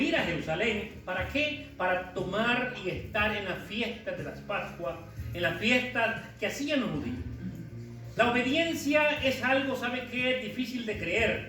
ir a Jerusalén. ¿Para qué? Para tomar y estar en las fiestas de las Pascuas, en las fiestas que hacían los judíos. La obediencia es algo, ¿sabe qué? Difícil de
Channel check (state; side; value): identical; both; correlation 1.00